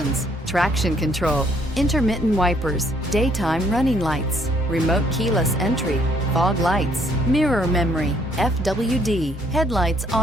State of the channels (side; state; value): both; normal; correlation 0.66